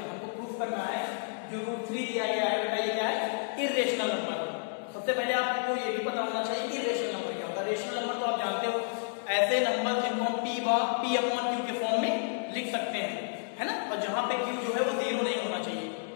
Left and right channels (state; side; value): silent; right; digital silence